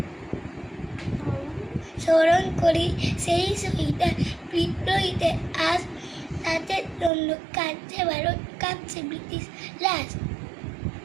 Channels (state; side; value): drops out; left; at 7.1 s